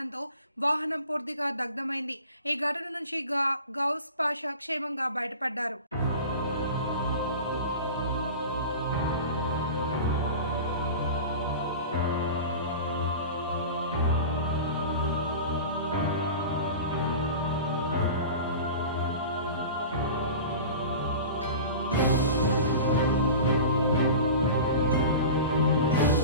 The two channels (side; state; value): both; inverted; correlation -0.35